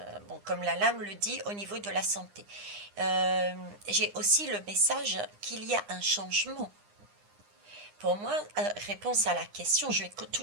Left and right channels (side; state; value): left; late; 9.8 ms